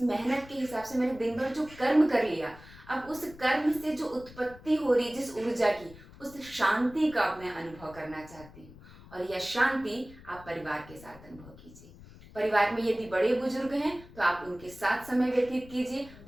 मेहनत के हिसाब से मैंने दिन भर जो कर्म कर लिया, अब उस कर्म से जो उत्पत्ति हो रही जिस ऊर्जा की, उस शांति का मैं अनुभव करना चाहती हूँ। और यह शांति आप परिवार के साथ अनुभव कीजिए। परिवार में यदि बड़े बुजुर्ग हैं तो आप उनके साथ समय व्यतीत कीजिए।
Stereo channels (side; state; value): left; noise; rumble, 20 dB below the sound